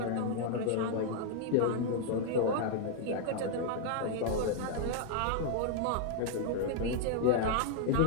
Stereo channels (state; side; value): different; both; correlation 0.00